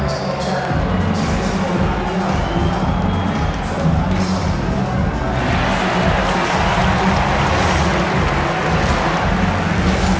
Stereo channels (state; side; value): identical; both; correlation 1.00